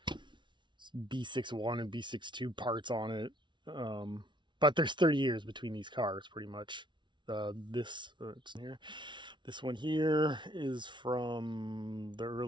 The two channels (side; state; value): left; late; 0.23 ms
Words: B6.1 and B6.2 parts on it. But there's 30 years between these cars, pretty much. It's here. This one here is from the